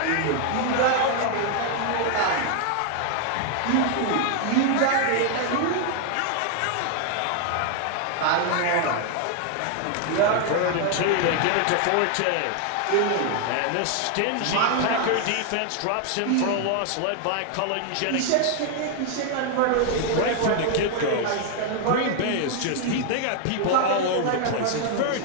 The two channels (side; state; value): both; different; correlation 0.00